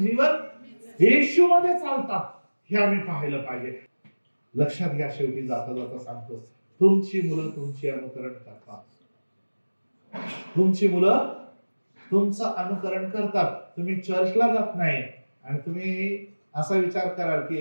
येशू मध्ये चालतात हे आम्ही पाहिलं पाहिजे. लक्षात घ्या, शेवटी जाता जाता सांगतो, तुमची मुलं तुमची अनुकरण करतात. तुमची मुलं तुमचं अनुकरण करतात. तुम्ही चर्चला जात नाही आणि तुम्ही असा विचार कराल की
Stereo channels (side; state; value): both; inverted; correlation -1.00